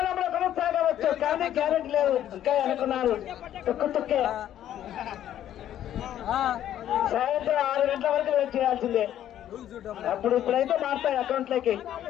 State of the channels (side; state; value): right; quieter; 11.4 dB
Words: కొనసాగవచ్చు. కానీ గ్యారెంటీ లేదు. ఇంకా అనుకున్నారు తుక్కే సాయంత్రం 6 గంటల వరకు వెయిట్ చేయాల్సిందే. ఇప్పుడైతే మారుతాయి అకౌంట్లోకి.